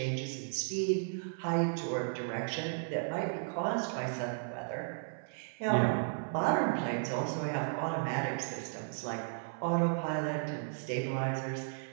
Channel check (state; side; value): silent; left; 55 dB below the other